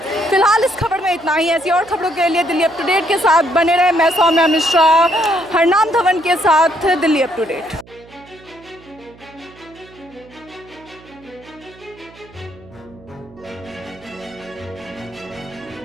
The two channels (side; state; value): right; noise; hum, 24 dB below the sound